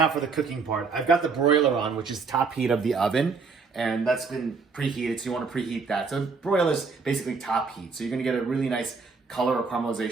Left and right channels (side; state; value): left; quieter; 4.8 dB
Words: for the cooking part. I've got the broiler on, which is top heat of the oven, and that's been preheated, so you want to preheat that. So broiler is basically top heat, so you're going to get a really nice color or